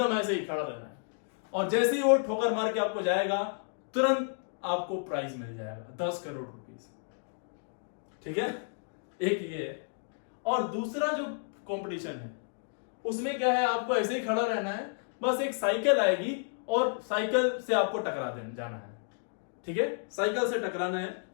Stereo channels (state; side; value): silent; right; digital silence